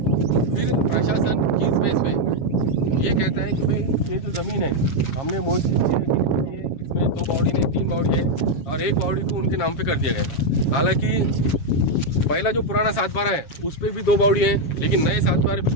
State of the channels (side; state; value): right; late; 7.3 ms